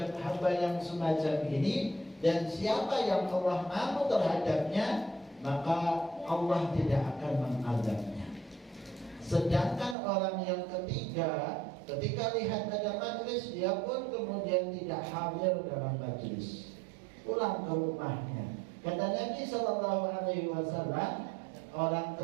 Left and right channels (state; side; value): drops out; left; at 10.0 s